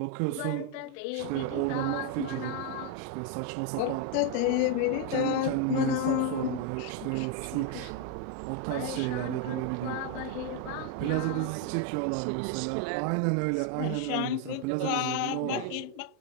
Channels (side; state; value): both; different; correlation 0.01